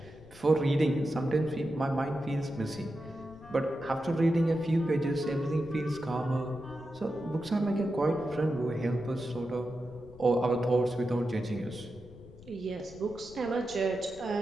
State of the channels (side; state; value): left; noise; rumble, 20 dB below the sound